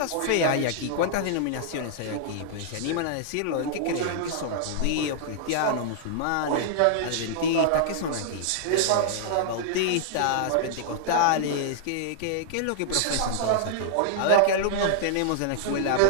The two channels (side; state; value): both; different; correlation -0.01